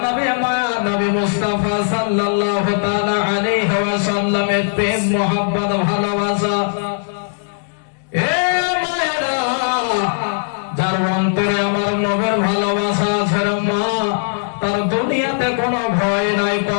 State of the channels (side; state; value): right; silent; digital silence